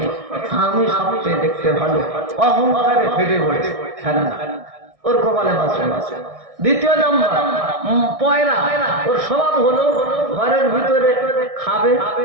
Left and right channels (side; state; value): left; late; 1.6 ms